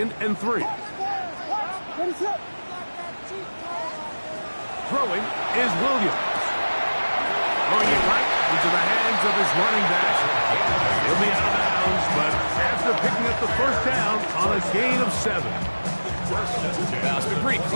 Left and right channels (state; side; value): inverted; both; correlation -1.00